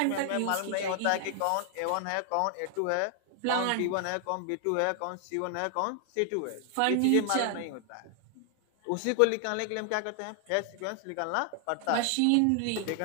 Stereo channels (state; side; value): different; both; correlation 0.00